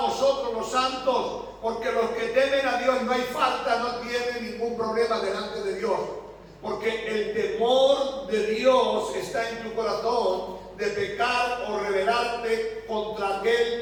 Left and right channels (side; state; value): both; identical; correlation 1.00